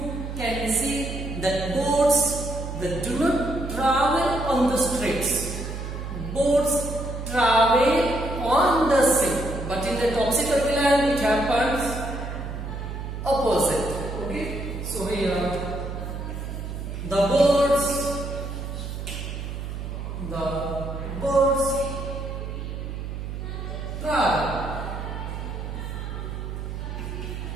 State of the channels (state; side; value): noise; right; hum, 6 dB below the sound